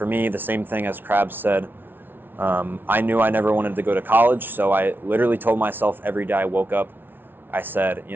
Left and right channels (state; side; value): late; left; 0.099 ms